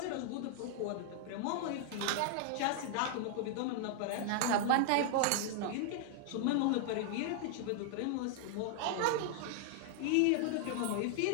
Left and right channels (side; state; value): both; different; correlation 0.00